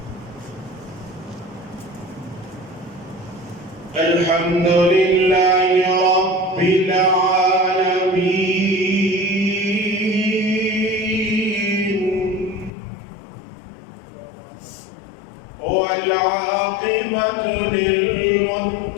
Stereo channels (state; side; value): drops out; right; at 12.7 s